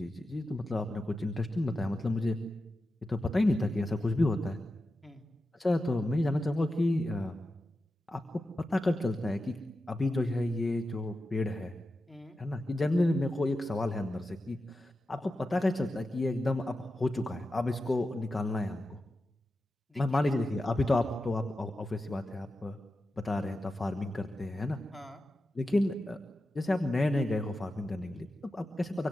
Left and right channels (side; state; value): both; normal; correlation 0.91